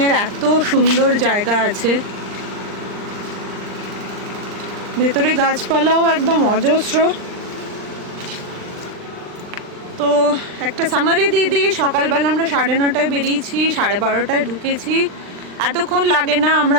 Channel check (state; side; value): late; left; 39 ms